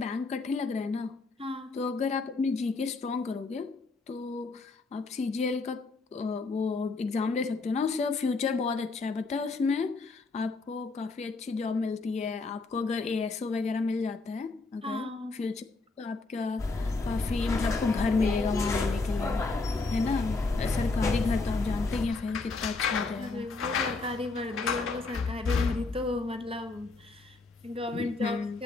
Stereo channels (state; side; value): quieter; right; 3.7 dB